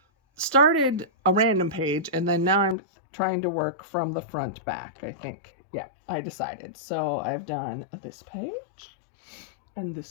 started a random page and then now I'm trying to work from the front back, I think. Yeah, I decided. So I've done this page. And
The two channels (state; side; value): drops out; right; at 2.8 s